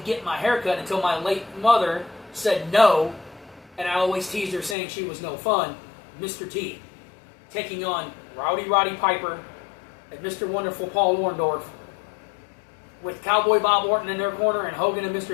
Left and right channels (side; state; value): right; drops out; at 4.8 s